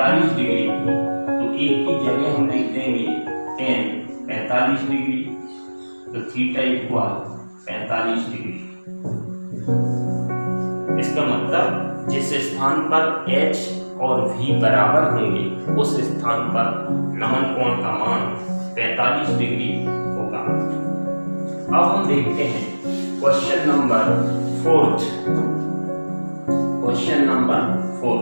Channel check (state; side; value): inverted; both; correlation -1.00